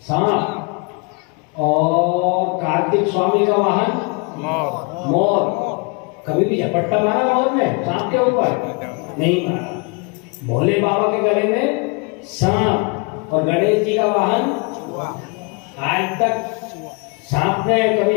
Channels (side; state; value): right; quieter; 31.9 dB